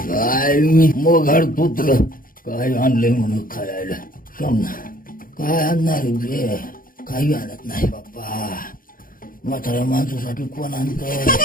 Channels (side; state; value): right; late; 0.41 ms